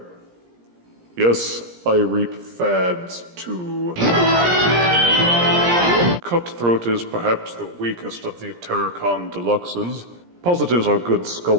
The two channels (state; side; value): late; left; 17 ms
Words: Yes, I reap fads too. Cutthroat is perhaps the weakest of the Terrorcon Deluxes. Positives are good